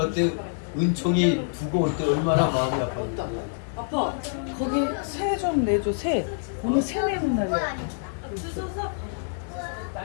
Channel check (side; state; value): right; silent; digital silence